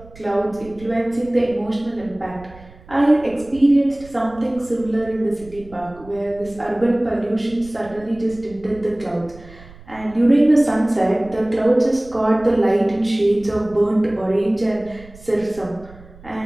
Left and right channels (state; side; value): noise; right; rumble, 21 dB below the sound